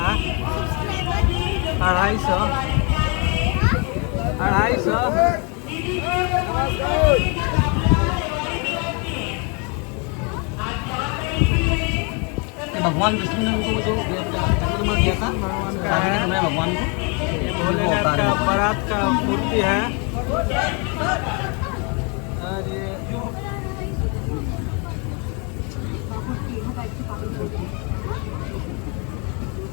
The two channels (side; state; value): right; quieter; 33.5 dB